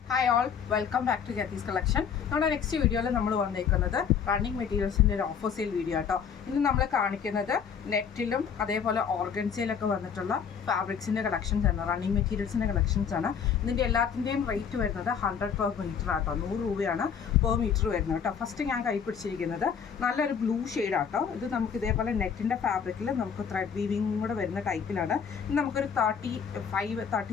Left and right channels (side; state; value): right; quieter; 7.1 dB